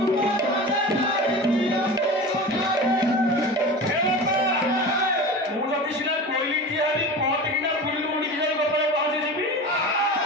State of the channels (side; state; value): both; normal; correlation 0.32